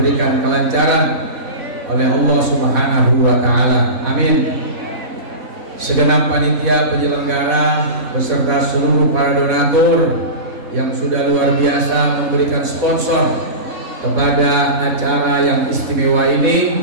kelancaran oleh Allah Subhanahu wa Ta'ala. Amin. Segenap panitia penyelenggara beserta seluruh para donatur yang sudah luar biasa memberikan sponsor kepada acara yang istimewa ini,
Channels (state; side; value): late; left; 4.1 ms